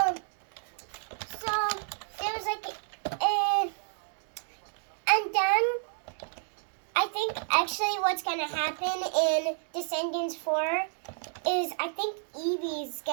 so there was like and then I think actually what's gonna happen in Descendants 4 is I think Evie's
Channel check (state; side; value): silent; left; 57 dB below the other